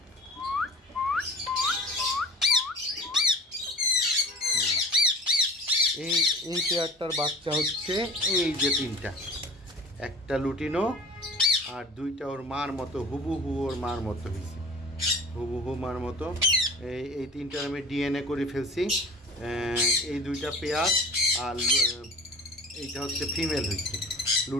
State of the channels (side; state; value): both; normal; correlation 0.41